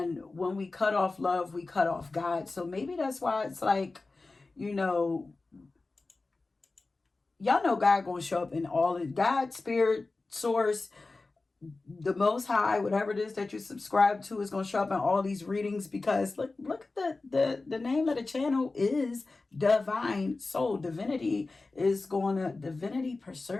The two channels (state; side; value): quieter; right; 3.5 dB